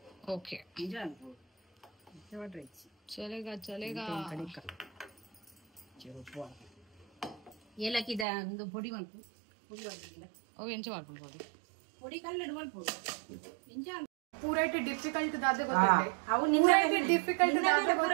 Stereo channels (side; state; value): left; drops out; at 8.2 s